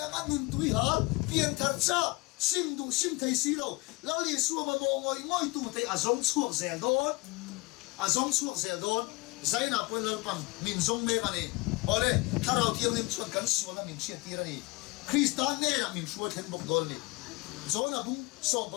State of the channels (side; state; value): right; quieter; 25.3 dB